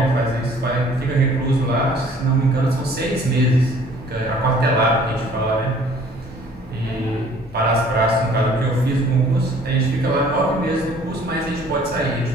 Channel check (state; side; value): normal; both; correlation 0.55